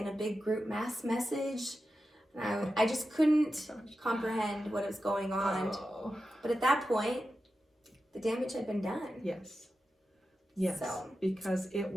a big group mass message. And I just couldn't comprehend what was going on. But at that point, the damage had been done. Yes. Yes. So, because it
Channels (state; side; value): normal; both; correlation 0.91